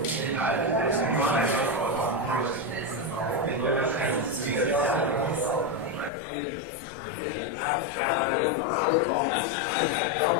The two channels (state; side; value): drops out; right; at 6.1 s